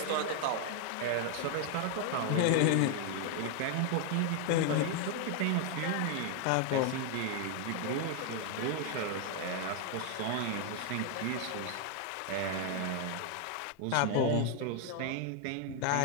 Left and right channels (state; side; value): different; both; correlation 0.00